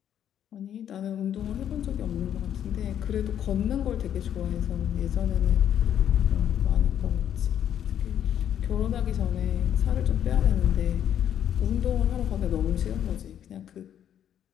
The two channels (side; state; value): right; quieter; 9.9 dB